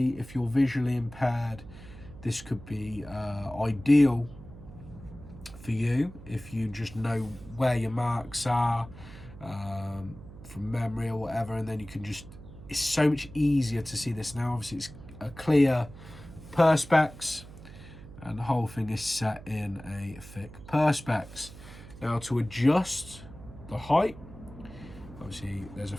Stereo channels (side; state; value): right; noise; hum, 16 dB below the sound